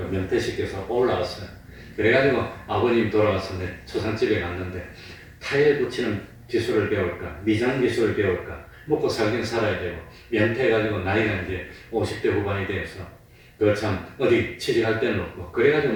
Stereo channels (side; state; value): both; identical; correlation 1.00